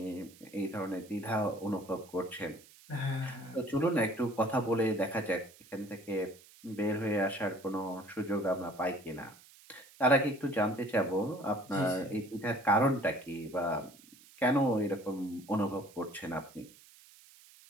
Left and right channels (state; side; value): noise; right; hiss, 23 dB below the sound